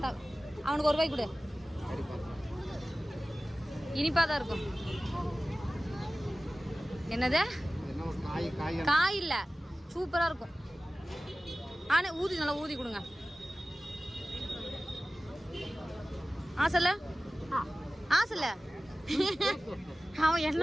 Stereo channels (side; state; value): both; normal; correlation 0.97